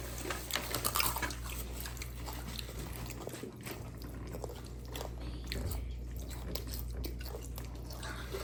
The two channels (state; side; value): identical; both; correlation 1.00